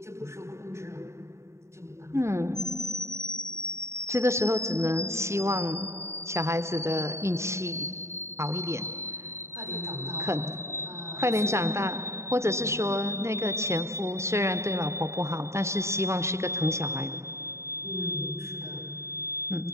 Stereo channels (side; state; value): left; late; 0.14 ms